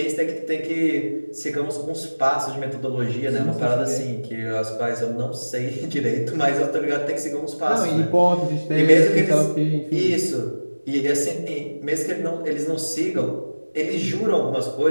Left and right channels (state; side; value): inverted; both; correlation -1.00